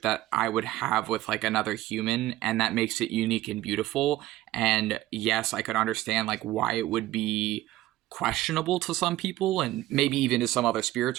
that I would have with like another human, and that makes it unique and beautiful. And yes, I could understand like why it would be questionable to some people, and maybe even to some other spirits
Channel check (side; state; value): left; quieter; 15.9 dB